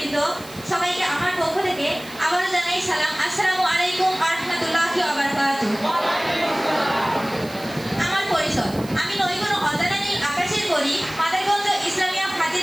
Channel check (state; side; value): noise; right; hiss, 19 dB below the sound